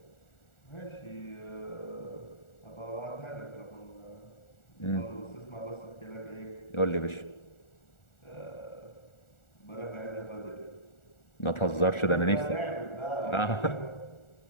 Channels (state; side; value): late; right; 1.4 ms